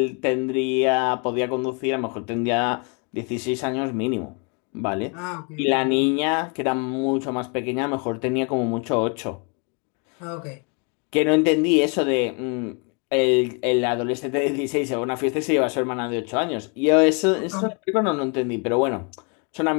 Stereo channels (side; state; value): right; quieter; 35.0 dB